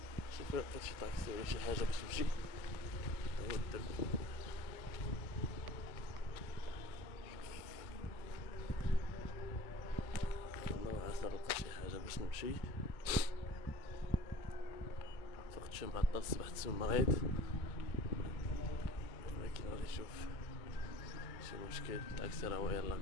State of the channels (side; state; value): right; late; 1.6 ms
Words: شوف لقيت شي طاكسي ولا شي حاجة باش نمشي. هو الدرب الله عسى نلقى شي حاجة باش نمشي. فقت شي معطل، صبحت مريض، ولكن غادي نشوف شي مشكل. الطاكسي راه هو يلاه